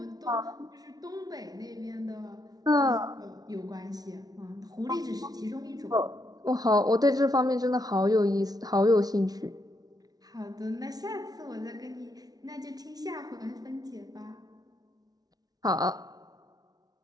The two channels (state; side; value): late; left; 0.19 ms